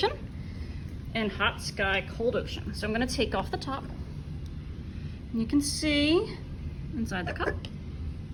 and hot sky, cold ocean. So I'm going to take off the top. And you can see inside the cup.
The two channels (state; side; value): identical; both; correlation 1.00